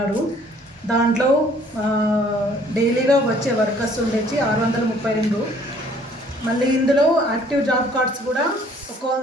దాంట్లో డైలీగా వచ్చే వర్కర్స్ ఉండేసి 632. మళ్ళీ ఇందులో యాక్టివ్ జాబ్ కార్డ్స్ కూడా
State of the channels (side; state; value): both; normal; correlation 0.58